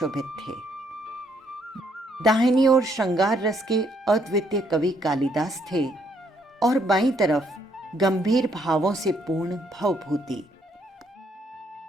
थे। दाहिनी ओर श्रृंगार रस के अद्वितीय कवि कालिदास थे और बाईं तरफ गंभीर भावों से पूर्ण भवभूति।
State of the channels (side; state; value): both; normal; correlation 0.71